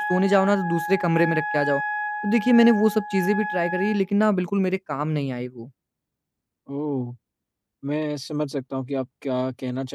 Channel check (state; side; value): identical; both; correlation 1.00